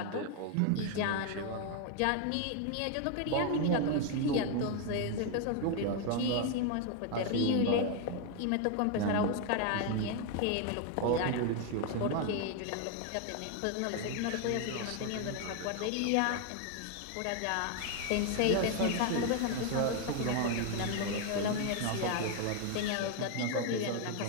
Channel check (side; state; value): both; different; correlation 0.01